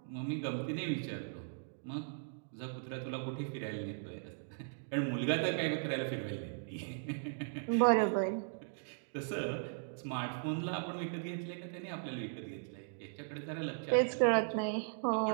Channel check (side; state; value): left; silent; digital silence